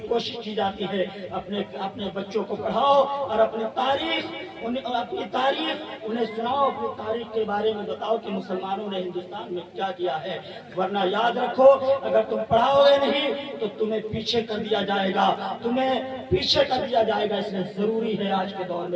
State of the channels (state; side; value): identical; both; correlation 1.00